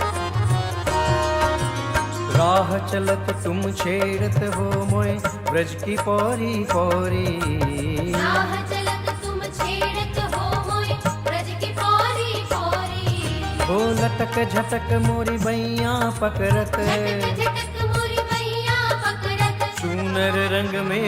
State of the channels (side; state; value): both; identical; correlation 1.00